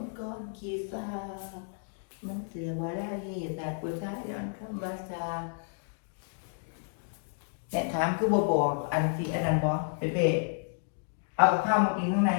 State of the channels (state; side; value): silent; right; digital silence